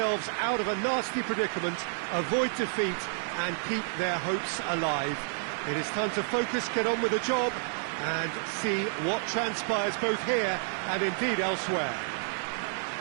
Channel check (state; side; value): silent; left; 58 dB below the other